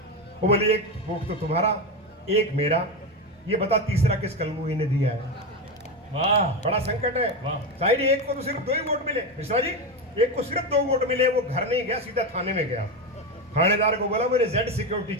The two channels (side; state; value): both; normal; correlation 0.15